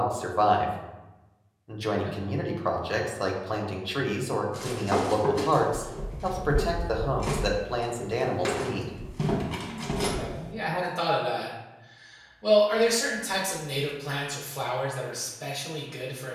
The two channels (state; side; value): identical; both; correlation 1.00